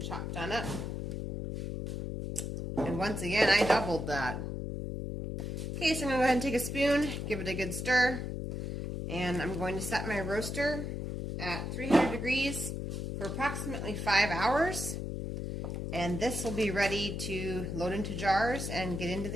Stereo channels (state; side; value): noise; left; hum, 4 dB below the sound